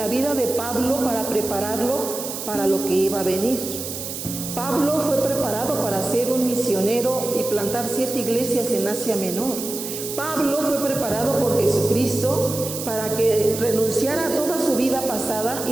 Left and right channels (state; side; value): noise; right; hiss, 7 dB below the sound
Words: vida de Pablo para prepararlo para lo que iba a venir. Pablo fue preparado para ser un misionero y plantar 7 iglesias en Asia Menor. Pablo fue preparado por Jesucristo para que renunciara a toda su vida pasada